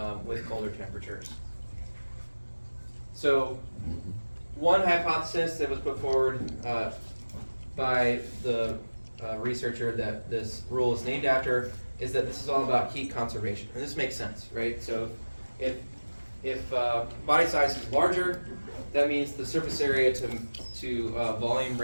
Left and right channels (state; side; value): inverted; both; correlation -1.00